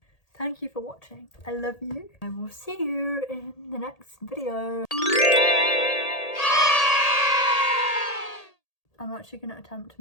thank you for watching. I love you. I will see you in the next video. I'm actually going to attempt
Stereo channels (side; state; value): right; late; 1.8 ms